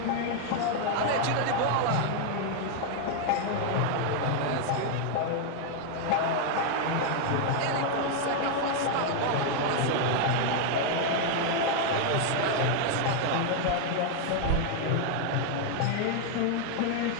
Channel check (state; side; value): different; both; correlation 0.00